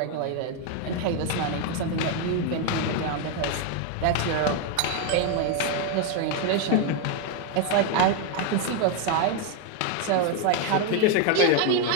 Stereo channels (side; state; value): both; different; correlation 0.01